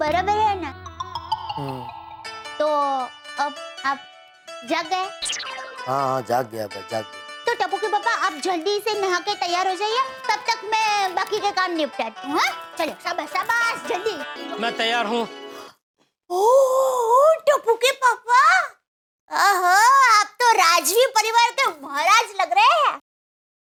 है ना? तो अब आप जाग गए? हाँ, जाग गया भाई, जाग गया। तो टप्पू के पापा, आप जल्दी से नहा के तैयार हो जाइए, तब तक मैं बाकी के काम निपटाती हूँ। चलो, शाबाश शाबाश, जल्दी। मैं तैयार हूँ। ओह, टप्पू के पापा, ओहो, आप तो राजवी परिवार के महाराज लग रहे हैं।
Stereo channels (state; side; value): identical; both; correlation 1.00